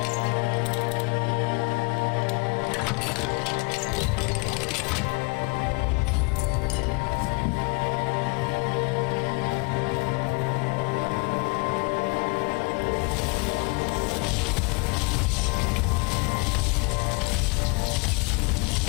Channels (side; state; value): right; quieter; 29.3 dB